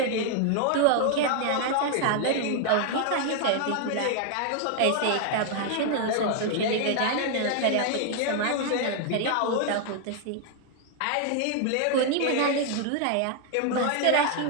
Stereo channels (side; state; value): both; different; correlation 0.00